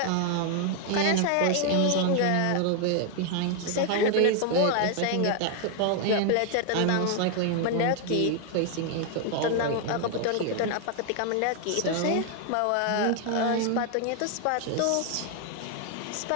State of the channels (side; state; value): both; different; correlation 0.00